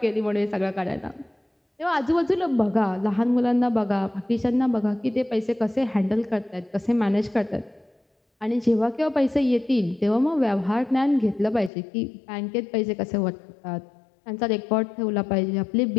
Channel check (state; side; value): drops out; right; at 11.7 s